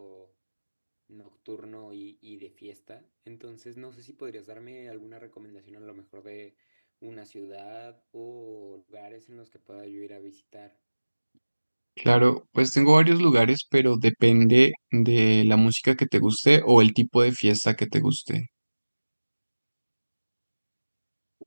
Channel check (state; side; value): inverted; both; correlation -1.00